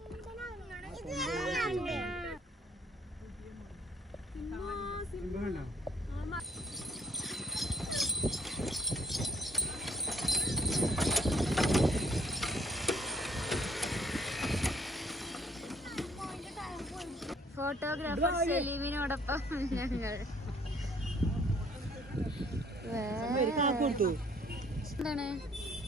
ഫോട്ടോഗ്രാഫർ സലീമിനോടൊപ്പം ഞങ്ങൾ എന്താണ്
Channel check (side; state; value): both; normal; correlation 0.62